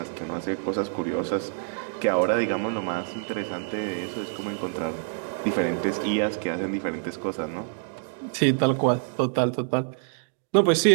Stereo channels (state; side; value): silent; left; digital silence